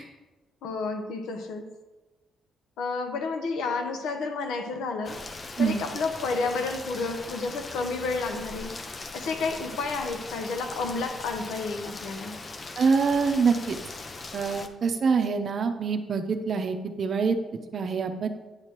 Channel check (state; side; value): normal; both; correlation 0.72